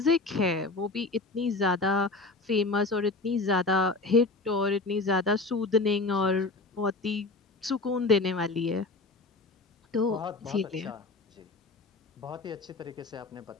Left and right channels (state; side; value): quieter; right; 3.4 dB